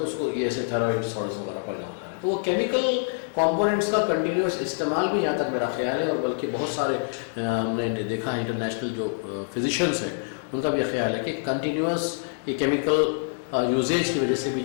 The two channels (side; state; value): right; silent; digital silence